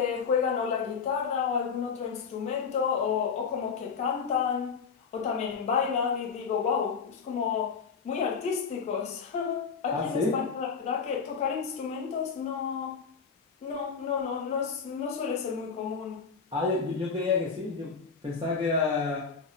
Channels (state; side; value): quieter; right; 5.7 dB